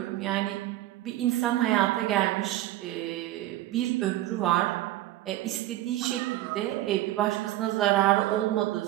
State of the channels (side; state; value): left; quieter; 15.3 dB